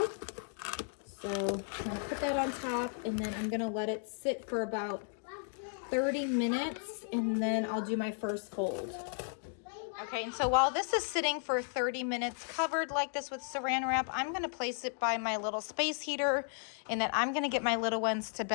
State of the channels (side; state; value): right; silent; 55 dB below the other